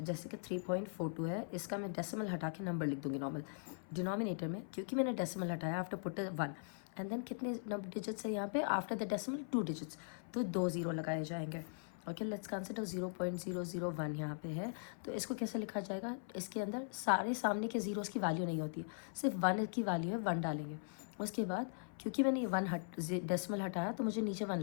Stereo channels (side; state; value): right; silent; 51 dB below the other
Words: जैसे कि 3.42 है, इसका मैं decimal हटा के number लिख दूंगी नॉर्मल डिनोमिनेटर में, क्योंकि मैंने डेसिमल हटाया आफ्टर पुट 1 एंड देन कितने डिजिट्स है यहाँ पे आफ्टर द डेसिमल 2 डिजिट्स, तो 2 0 लगाए जाएंगे. ओके, लेट्स कंसिडर 0.001 यहाँ पे है, तो इसको कैसे लिखा जाएगा? इसके अंदर सारे सामने के जीरोस की वैल्यू नहीं होती, सिर्फ 1 की वैल्यू है, 1 डालेंगे. उसके बाद क्योंकि मैंने ये 1 डेसिमल हटाया तो मुझे नीचे 1